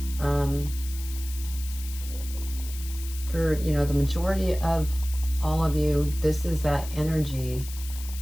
for, you know, the majority of all of you, this is that energy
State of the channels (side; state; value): left; noise; hiss, 13 dB below the sound